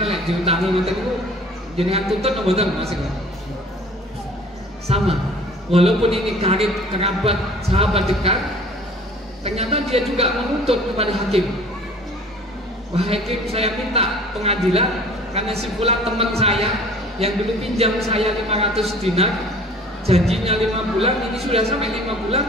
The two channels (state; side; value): normal; both; correlation 0.49